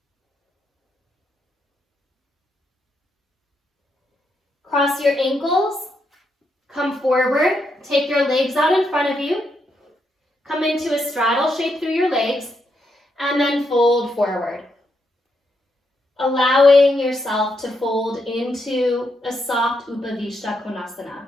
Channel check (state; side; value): normal; both; correlation 0.80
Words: Cross your ankles, come forward, take your legs out in front of you, come into a straddle shape through your legs, and then fold forward. Allowing yourself to fold into a soft Upavishta Konasana.